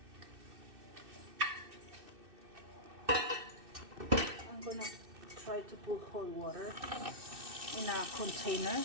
I'm gonna try to put hot water in a container,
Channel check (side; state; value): left; late; 2.6 ms